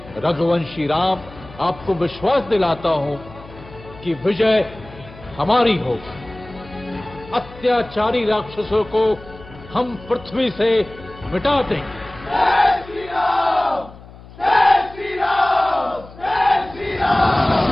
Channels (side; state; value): left; noise; hum, 19 dB below the sound